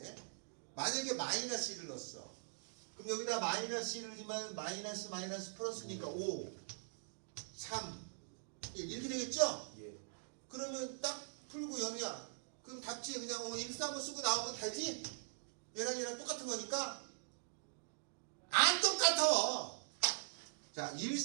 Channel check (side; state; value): left; silent; digital silence